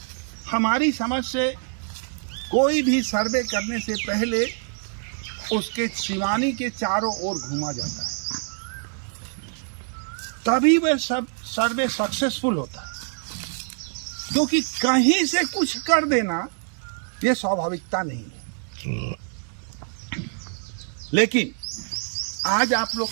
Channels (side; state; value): left; silent; 55 dB below the other